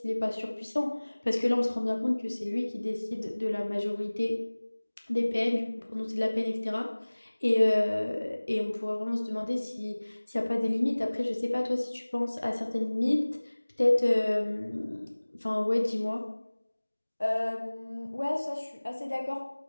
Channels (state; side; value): inverted; both; correlation -1.00